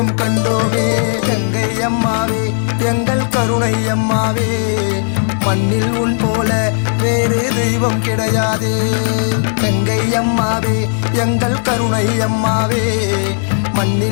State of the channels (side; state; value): right; silent; digital silence